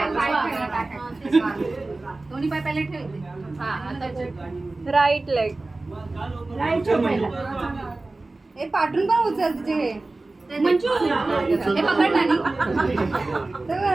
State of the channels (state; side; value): quieter; left; 3.1 dB